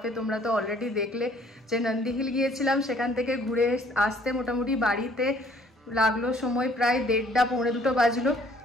তোমরা তো অলরেডি দেখলে যে নন্দী হিল গিয়েছিলাম, সেখান থেকে ঘুরে আসতে মোটামুটি বাড়িতে লাগলো সময় প্রায় 1:30 পৌনে 2 বাজলো।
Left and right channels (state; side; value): normal; both; correlation 0.59